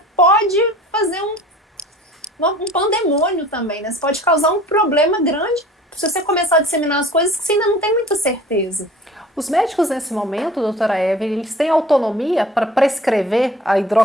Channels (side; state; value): both; normal; correlation 0.46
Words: pode fazer um pandemônio também, né? Você pode causar um problema grande se você começar a disseminar as coisas que você ainda não tem muita certeza. Os médicos nesse momento, doutora Evelyn, eles têm autonomia para prescrever a